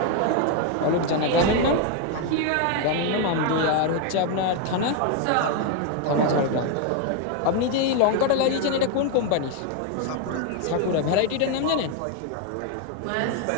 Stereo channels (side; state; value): both; different; correlation 0.01